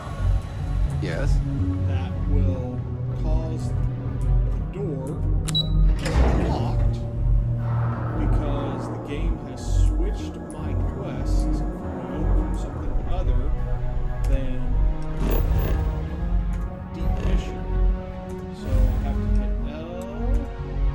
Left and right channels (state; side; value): identical; both; correlation 1.00